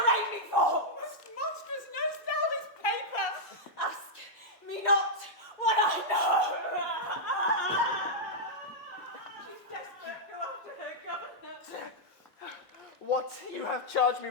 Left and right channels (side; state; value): both; normal; correlation -0.07